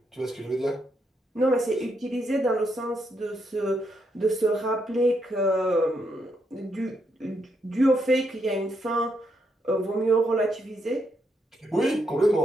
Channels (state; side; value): normal; both; correlation 0.79